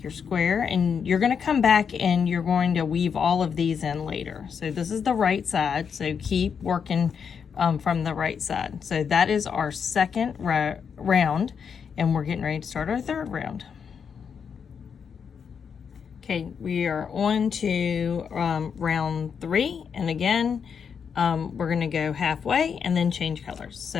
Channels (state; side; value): quieter; right; 6.7 dB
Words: your square. And you're going to come back and you're going to weave all of these in later. So this is the right side, so keep working from the right side. So that is our second round, and we're getting ready to start our third round. Okay, we are on to round 3, and again, we're going to go halfway and then change colors. So